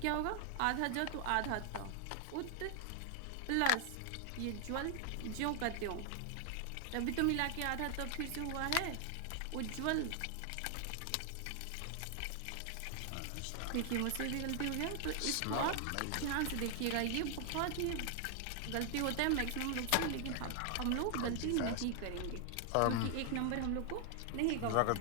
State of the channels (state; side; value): different; both; correlation 0.00